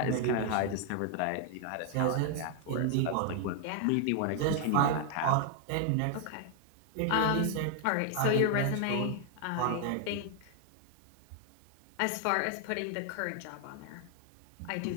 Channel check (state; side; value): different; both; correlation 0.00